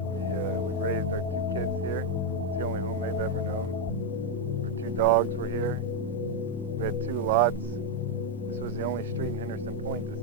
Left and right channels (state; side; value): normal; both; correlation 0.03